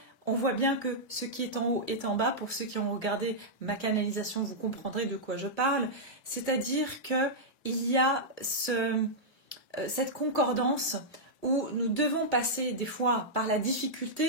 on voit bien que ce qui est en haut est en bas. Pour ceux qui ont regardé ma canalisation, vous comprendrez de quoi je parle. C'est-à-dire qu'il y a cette concordance où nous devons passer des fois par la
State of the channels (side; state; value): right; late; 1.8 ms